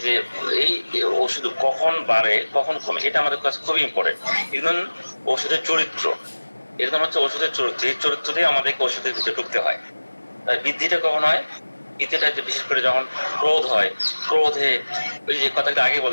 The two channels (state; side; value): inverted; both; correlation -1.00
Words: যে এই ওষুধ কখন বাড়ে কখন কমে, এটা আমাদের কাছে খুবই ইম্পর্টেন্ট। একদম ওষুধের চরিত্র, একদম হচ্ছে ওষুধের চরিত্র, এই চরিত্র দিয়ে আমাদেরকে ওষুধের ভিতরে ঢুকতে হয়। বৃদ্ধিটা কখন হয়? বৃদ্ধিটা বিশেষ করে যখন ক্রোধ হয়, ক্রোধে ওই যে কথাটা আগে